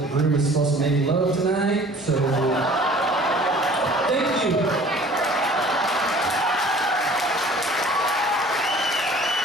the groom is supposed to make love tonight. So, thank you.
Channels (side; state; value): both; normal; correlation 0.49